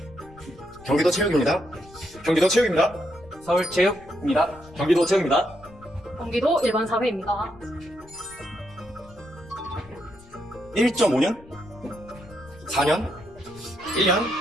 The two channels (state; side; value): noise; left; rumble, 22 dB below the sound